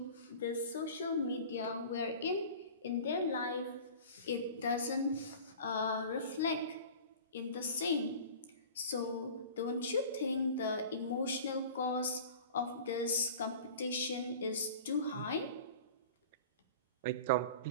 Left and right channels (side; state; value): both; inverted; correlation -0.40